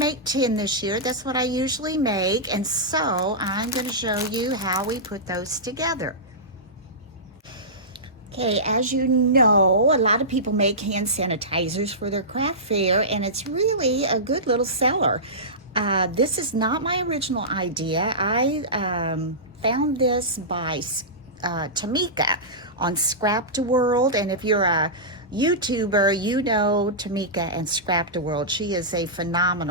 10 this year. That's what I usually make. And so I'm going to show you how we put those together. Okay, as you know, a lot of people make hand sanitizers for their craft fair, and it's really a good little seller. This is not my original idea. I found this by Tamika on ScrapdaWorld, and if you're a YouTuber, you know Tamika and ScrapdaWorld. She is a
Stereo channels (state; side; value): normal; both; correlation -0.17